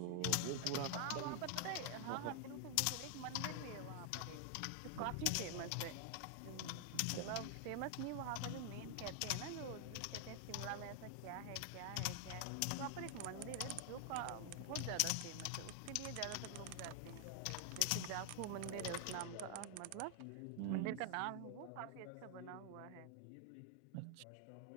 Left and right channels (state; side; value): different; both; correlation 0.00